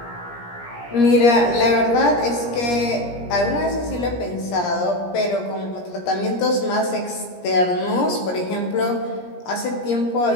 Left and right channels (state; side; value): late; right; 17 ms